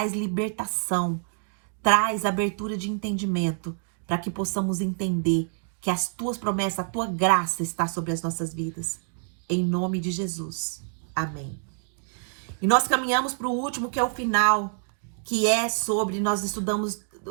libertação, traz abertura de entendimento, para que possamos entender que as Tuas promessas, a Tua graça está sobre as nossas vidas. Em nome de Jesus. Amém. E nós caminhamos para o último, que é o final, que é sobre, nós estudamos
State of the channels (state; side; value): silent; left; 60 dB below the other